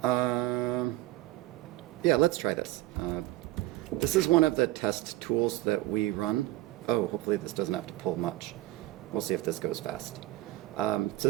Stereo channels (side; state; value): left; quieter; 17.1 dB